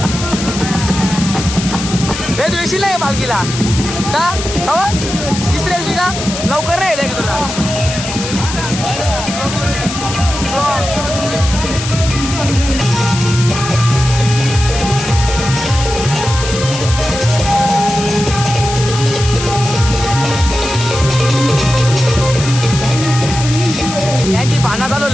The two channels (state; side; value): noise; left; hiss, 7 dB below the sound